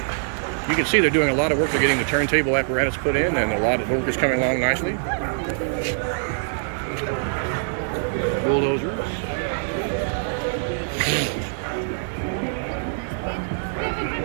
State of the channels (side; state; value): left; silent; digital silence